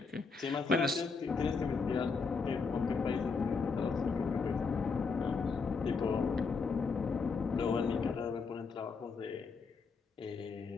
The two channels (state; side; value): quieter; right; 4.8 dB